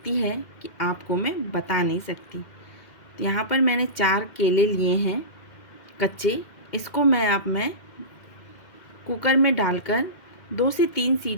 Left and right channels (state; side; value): late; right; 2.1 ms